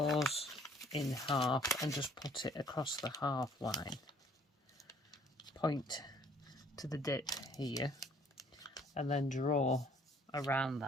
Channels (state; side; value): normal; both; correlation 0.59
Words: in half and just put it across the half line. Point to the dip here and then draw around